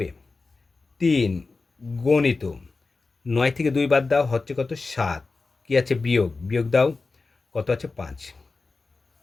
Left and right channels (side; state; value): right; quieter; 3.9 dB